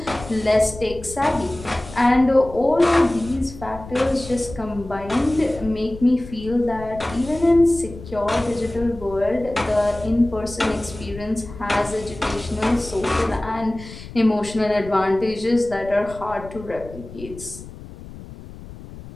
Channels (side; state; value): left; noise; rumble, 15 dB below the sound